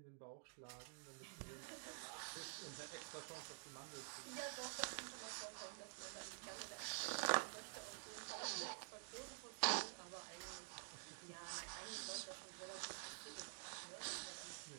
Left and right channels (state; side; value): silent; left; digital silence